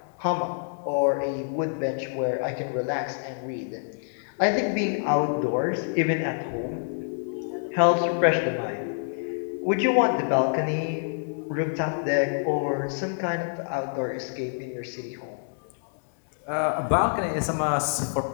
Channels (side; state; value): right; silent; digital silence